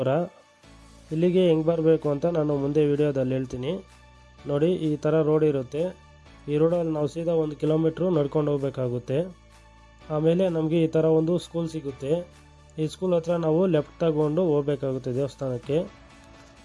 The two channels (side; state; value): both; identical; correlation 1.00